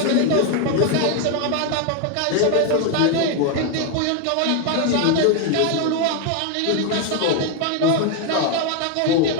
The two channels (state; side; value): different; both; correlation 0.01